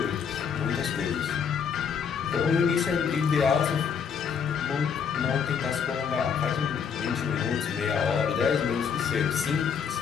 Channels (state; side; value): quieter; right; 6.9 dB